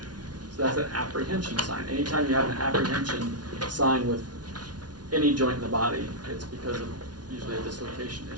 So that's an apprehension sign. Anytime you have an apprehension sign with any joint in the body, it's because of usually a dislocation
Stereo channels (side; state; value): left; late; 0.69 ms